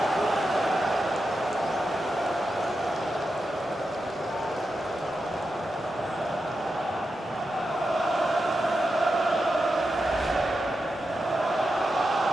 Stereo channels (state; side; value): normal; both; correlation 0.88